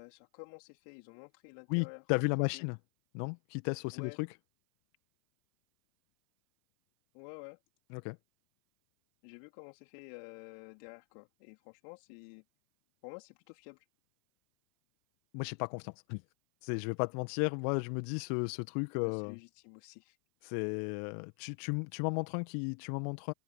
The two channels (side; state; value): right; silent; 51 dB below the other